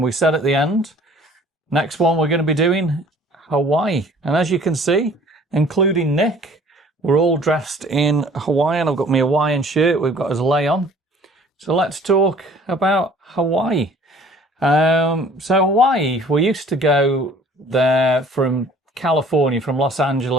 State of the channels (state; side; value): normal; both; correlation 0.52